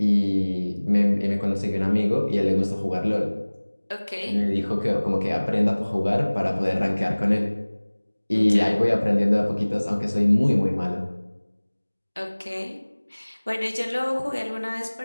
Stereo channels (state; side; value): inverted; both; correlation -1.00